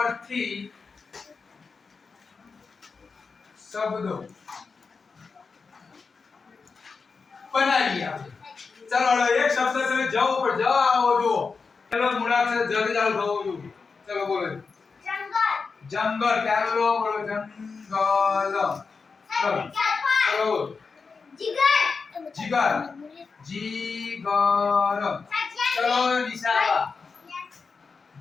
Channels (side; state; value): right; quieter; 4.9 dB